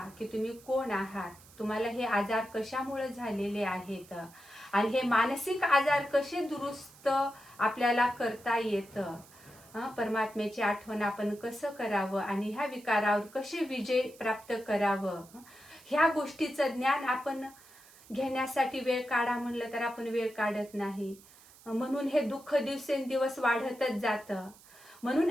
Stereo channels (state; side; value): noise; right; hiss, 23 dB below the sound